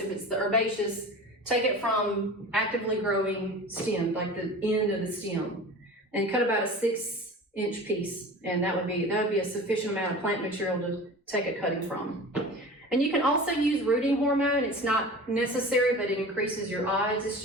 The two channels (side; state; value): both; normal; correlation 0.37